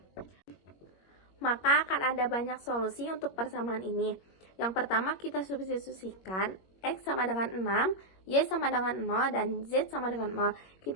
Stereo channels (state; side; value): late; right; 21 ms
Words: Maka akan ada banyak solusi untuk persamaan ini. Yang pertama kita substitusikan X sama dengan 6, Y sama dengan 0, dan Z sama dengan 0.